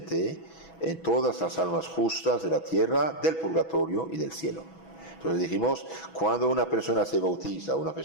en todas las almas justas de la tierra, del purgatorio y del cielo. Entonces dijimos, cuando una persona se bautiza, una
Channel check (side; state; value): right; late; 6.1 ms